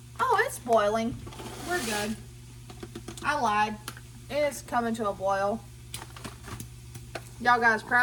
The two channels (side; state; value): both; identical; correlation 1.00